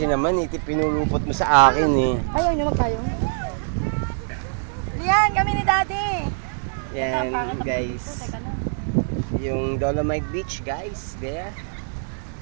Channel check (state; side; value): silent; left; digital silence